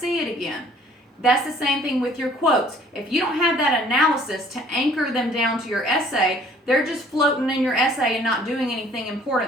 it again. That's the same thing with your quotes. If you don't have that analysis to anchor them down to your essay, they're just floating in your essay and not doing anything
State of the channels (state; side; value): normal; both; correlation 0.56